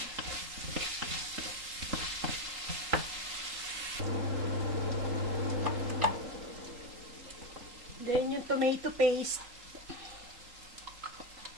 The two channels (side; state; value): left; late; 3.8 ms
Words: Then yung tomato paste.